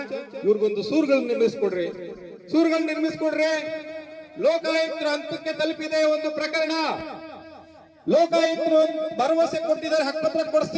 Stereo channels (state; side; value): identical; both; correlation 1.00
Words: ಇವ್ರಿಗೊಂದು ಸೂರುಗಳನ್ನ ನಿರ್ಮಿಸ್ಕೊಡ್ರಿ. ಲೋಕಾಯುಕ್ತರ ಹಂತಕ್ಕೆ ತಲುಪಿದೆ ಒಂದು ಪ್ರಕರಣ. ಲೋಕಾಯುಕ್ತರು ಭರವಸೆ ಕೊಟ್ಟಿದ್ದಾರೆ ಹಕ್ಕುಪತ್ರ